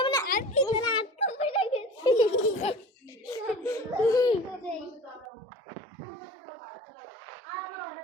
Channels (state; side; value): drops out; left; at 5.2 s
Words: মানে আর কি না আটকে পড়ে গেছি